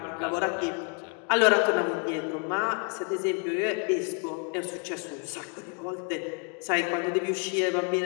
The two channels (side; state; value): right; quieter; 36.4 dB